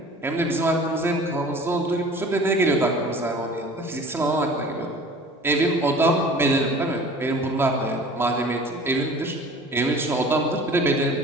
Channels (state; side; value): normal; both; correlation 0.45